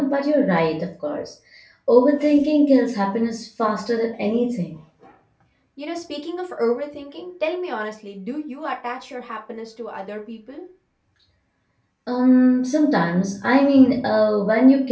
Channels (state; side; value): identical; both; correlation 1.00